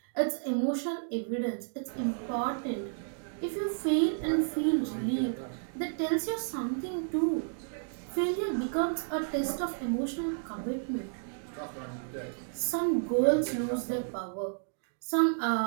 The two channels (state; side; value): silent; left; digital silence